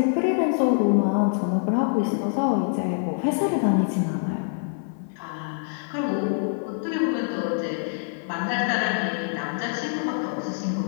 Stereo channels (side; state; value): right; silent; 62 dB below the other